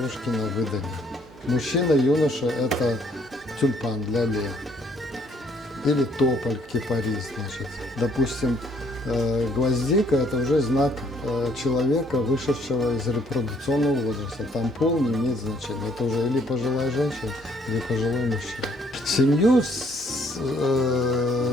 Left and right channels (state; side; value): normal; both; correlation 0.64